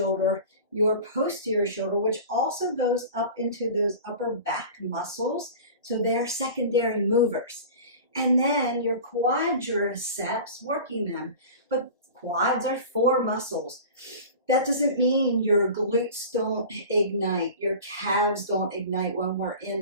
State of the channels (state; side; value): inverted; both; correlation -0.37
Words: your posterior shoulder, which also goes up into those upper back muscles. So they're secondary movers. And then your quadriceps, working them. But quads are 4 muscles. That doesn't mean your glutes don't ignite, your calves don't ignite when we're